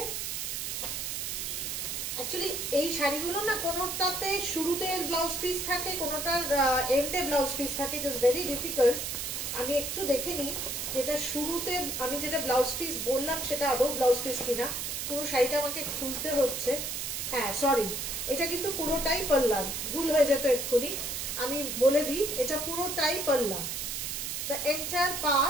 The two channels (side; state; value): right; noise; hiss, 3 dB below the sound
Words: অ্যাকচুয়ালি এই শাড়িগুলো না কোনোটাতে শুরুতে ব্লাউজ পিস থাকে, কোনোটার এন্ডে ব্লাউজ পিস থাকে, ইট ইজ ভেরি ডিফিকাল্ট। আমি একটু দেখে নিই যেটা শুরুতে আমি যেটা ব্লাউজ পিস বললাম সেটা আদৌ ব্লাউজ পিস কিনা। পুরো শাড়িটা আমাকে খুলতে হচ্ছে। হ্যাঁ সরি, এটা কিন্তু পুরোটাই পাল্লা, ভুল হয়ে যেত এক্ষুনি। আমি বলে দিই এটা পুরোটাই পাল্লা। দ্য এন্টায়ার